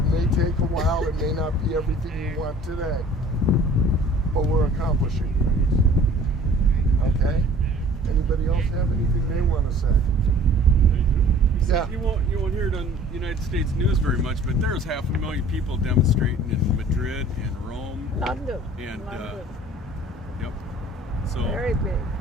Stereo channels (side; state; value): both; normal; correlation 0.50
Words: may take a while. It may not be everything you want today. But we're accomplishing things. Okay? Anybody else have anything they want to say? Yeah. You won't hear it on United States news very much, but there's 500,000 people demonstrating in Madrid and Rome. London. And London. Yep. So Very big.